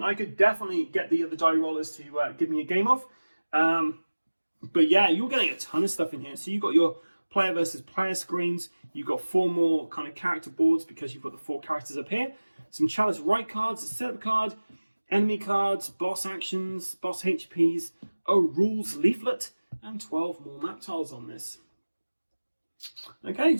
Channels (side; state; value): both; inverted; correlation -1.00